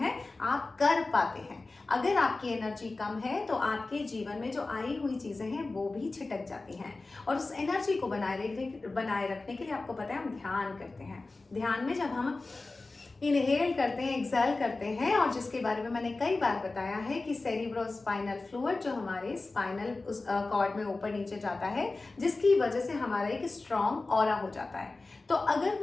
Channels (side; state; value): right; quieter; 3.4 dB